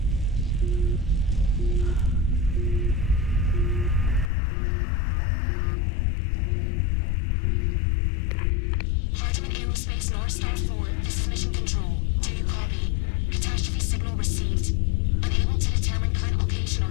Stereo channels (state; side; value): drops out; right; at 4.3 s